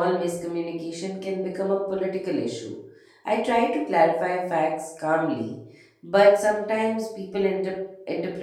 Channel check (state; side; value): identical; both; correlation 1.00